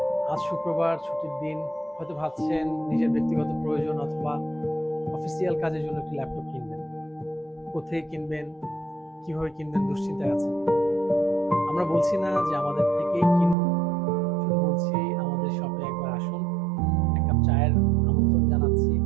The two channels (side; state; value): left; drops out; at 13.6 s